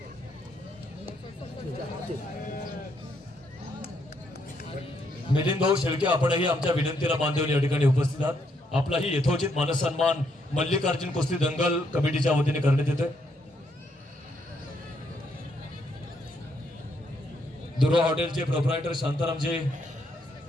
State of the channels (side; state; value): both; normal; correlation 0.74